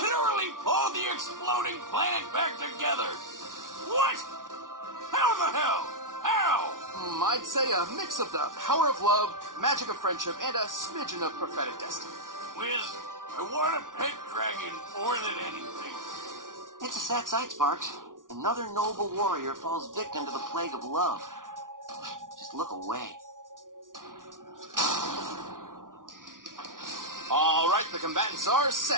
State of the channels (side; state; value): left; late; 0.88 ms